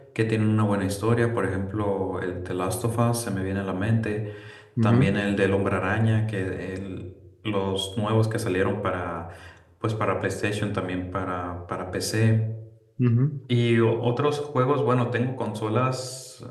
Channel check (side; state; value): both; identical; correlation 1.00